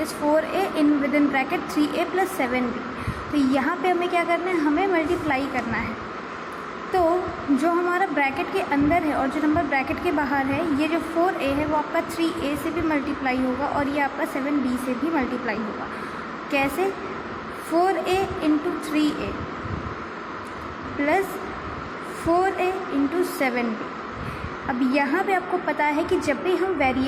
4A in with in bracket 3A + 7B। तो यहाँ पे हमें क्या करना है, हमें मल्टीप्लाई करना है। तो जो हमारा ब्रैकेट के अंदर है और जो नंबर ब्रैकेट के बाहर है, ये जो 4A है वो आपका 3A से भी मल्टीप्लाई होगा और ये आपका 7B से भी मल्टीप्लाई होगा। कैसे? 4A into 3A plus 4A into 7B। अब यहाँ पे आपको पता है कि जब भी हम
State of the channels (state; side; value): identical; both; correlation 1.00